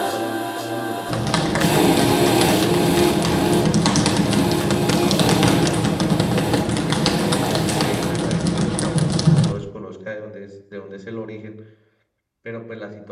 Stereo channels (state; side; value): identical; both; correlation 1.00